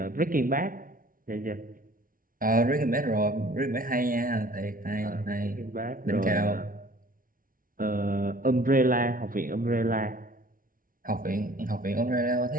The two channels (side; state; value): left; late; 0.40 ms